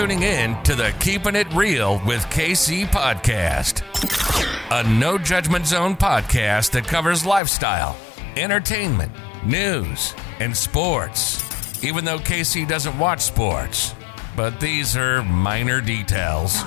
in to the Keeping It Real with KC podcast, a no judgment zone podcast that covers lifestyle, entertainment, news, and sports. Even though KC doesn't watch sports, but these are minor details.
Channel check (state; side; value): drops out; right; at 7.4 s